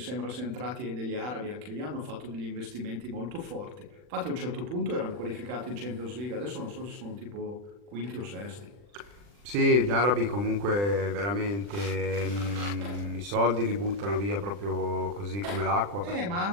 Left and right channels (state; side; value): late; left; 40 ms